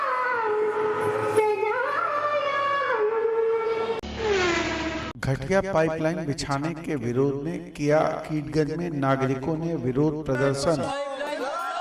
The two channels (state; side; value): identical; both; correlation 1.00